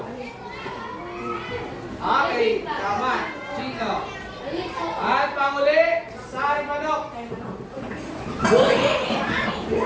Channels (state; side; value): identical; both; correlation 1.00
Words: Okay, tama. Chino. At panguli, sari manok.